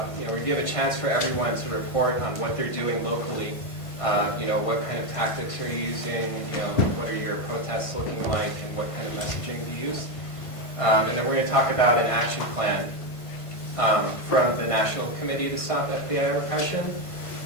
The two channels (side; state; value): right; late; 1.5 ms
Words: we're going to give a chance for everyone to report on what they're doing locally. What kind of tactics are you using? What are your protests looking like, and what kind of messaging do you use? And then we're going to talk about an action plan from the National Committee to Stop FBI Repression.